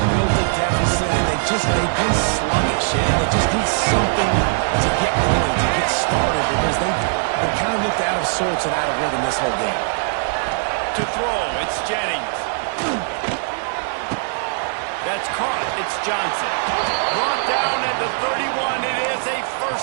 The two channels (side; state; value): left; silent; 65 dB below the other